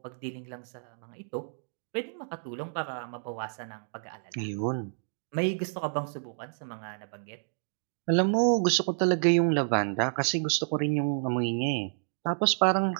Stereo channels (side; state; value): left; silent; digital silence